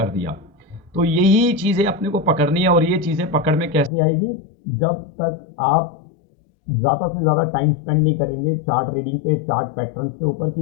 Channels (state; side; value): drops out; right; at 3.9 s